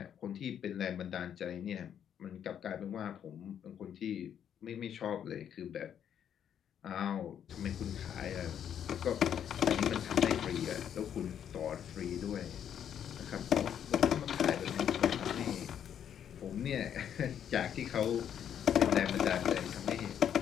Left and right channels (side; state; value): right; quieter; 9.1 dB